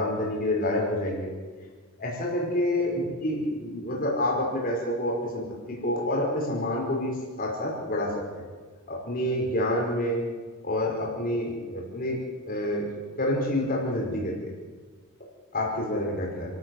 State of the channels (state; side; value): normal; both; correlation 0.12